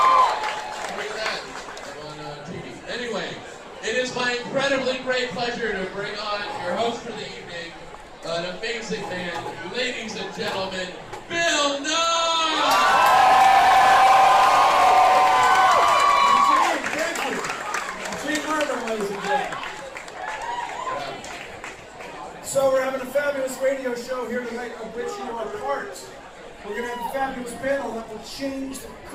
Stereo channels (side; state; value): both; identical; correlation 1.00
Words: at that on TV. Anyway, it is my incredibly great pleasure to bring on your host for the evening, an amazing man, ladies and gentlemen, Bill Nye! So we're having a fabulous radio show here tonight of which you are part. We're going to have a fabulous panel that will change the